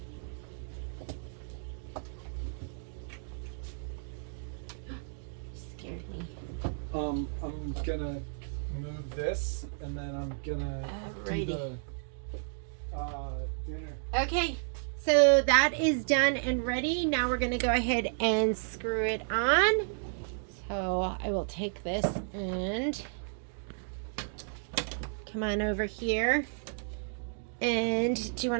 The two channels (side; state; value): left; silent; digital silence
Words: Scared me. I'm gonna move this and then I'm gonna do the dinner. Okay, so that is done and ready. Now we're gonna go ahead and screw it on. So I will take this and come on over here. And do you